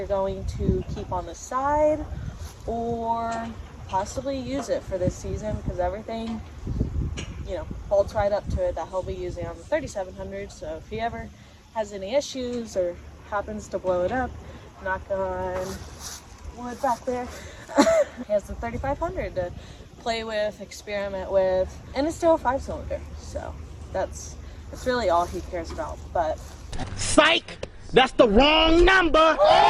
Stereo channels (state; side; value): identical; both; correlation 1.00